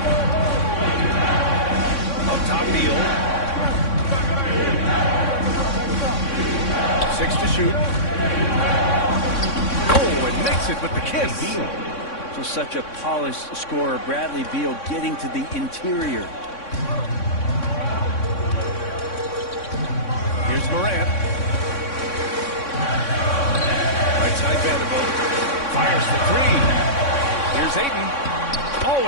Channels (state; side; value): late; right; 3.6 ms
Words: Up top, Beal. 6 to shoot. Oh, and makes it with the kiss. Just such a polished scorer. Bradley Beal getting to the interior. Here's Morant. Right side Vanderbilt. Fires for three. Here's Ayton.